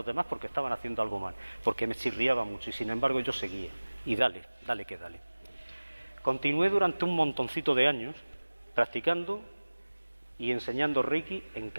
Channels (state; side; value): inverted; both; correlation -1.00